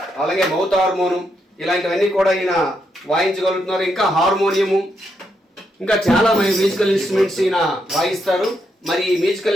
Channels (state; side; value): normal; both; correlation 0.80